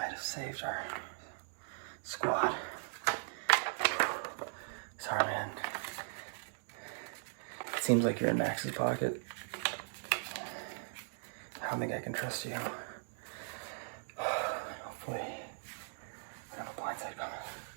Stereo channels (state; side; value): silent; left; digital silence